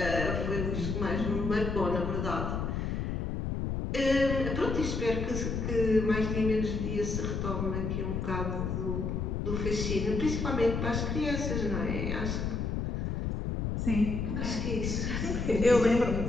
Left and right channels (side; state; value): left; noise; rumble, 1 dB below the sound